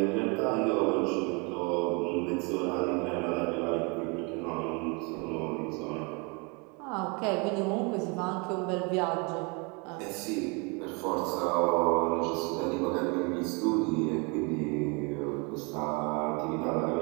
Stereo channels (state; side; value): quieter; left; 31.2 dB